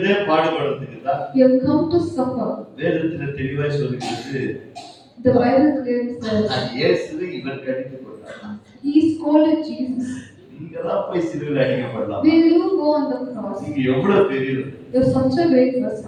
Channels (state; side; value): identical; both; correlation 1.00